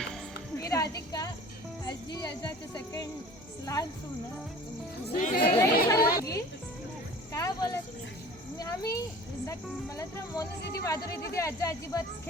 मी राधिका आजी आजाचे सेकंड लहान सून काय बोलत आम्ही मला तर मोनू दीदी माधुरी दीदी आजा अजिबात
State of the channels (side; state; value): both; normal; correlation 0.44